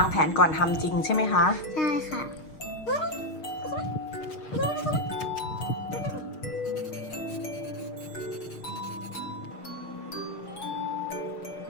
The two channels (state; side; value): late; right; 6.5 ms